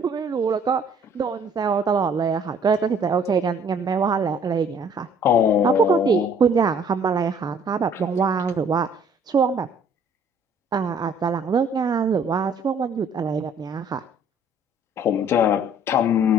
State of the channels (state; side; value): normal; both; correlation 0.57